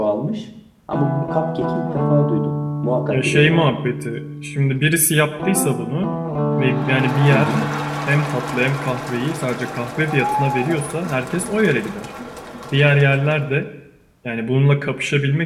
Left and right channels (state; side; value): identical; both; correlation 1.00